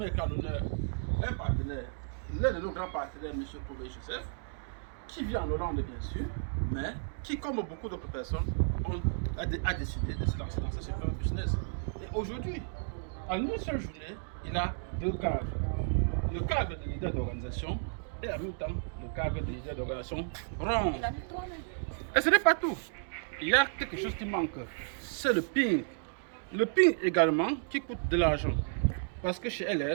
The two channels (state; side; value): silent; left; digital silence